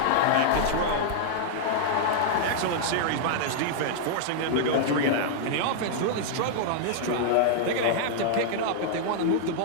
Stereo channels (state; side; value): different; both; correlation -0.01